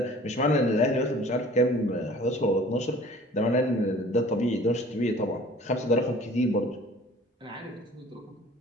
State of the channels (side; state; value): both; normal; correlation 0.48